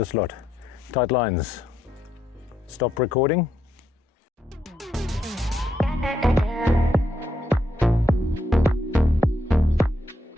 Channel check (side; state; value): both; normal; correlation 0.78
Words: lot. Tight lines. Stop recording.